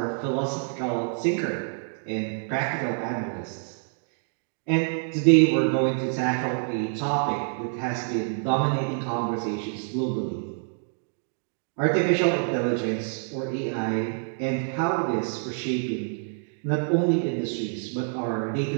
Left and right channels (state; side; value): silent; left; 60 dB below the other